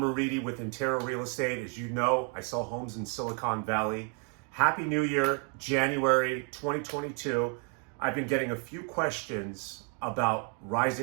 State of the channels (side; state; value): left; quieter; 38.6 dB